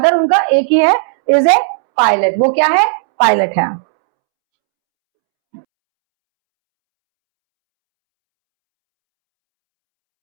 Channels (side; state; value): left; silent; 72 dB below the other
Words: उनका एक ही है, इज ए पायलट. वो क्या है? पायलट है.